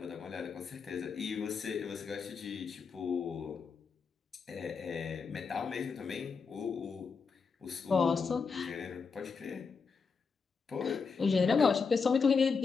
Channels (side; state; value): right; quieter; 5.2 dB